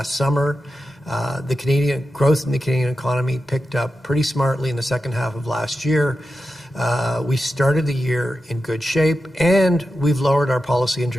summer. The Canadian growth in the Canadian economy picked up pretty smartly in the second half of last year. We started the year in good shape, and we've lowered our policy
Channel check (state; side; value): normal; both; correlation 0.91